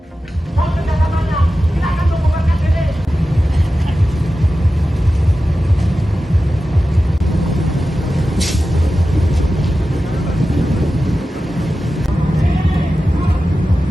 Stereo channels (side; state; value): both; normal; correlation 0.93